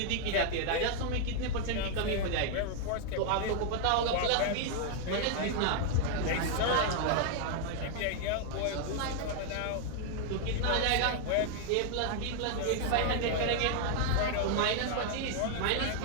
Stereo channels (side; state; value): both; different; correlation 0.00